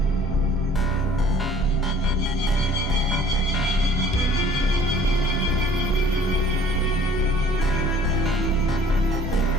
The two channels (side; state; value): both; normal; correlation 0.54